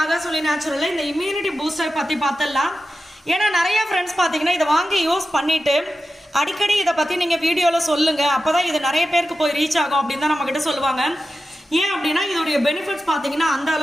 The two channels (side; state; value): both; normal; correlation 0.92